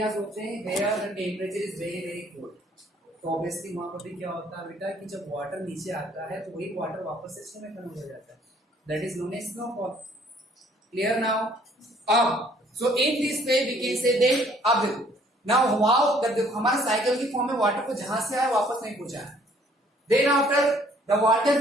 होते हैं where the temperature is very very cold, तो ऑब्वियसली वहां पर भी क्या होता है बेटा कि जब वाटर नीचे आता है तो वही वाटर वापस से स्नो में कन्वर्ट हो जाता है। That is known as snowfall. Clear now? अब so in this way we can say that, अब देखो नाउ हाउ, देखो हमारे साइकिल की फॉर्म में वाटर को जहां से आया वापस नहीं पहुंचा है। Then after the water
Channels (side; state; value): both; normal; correlation 0.60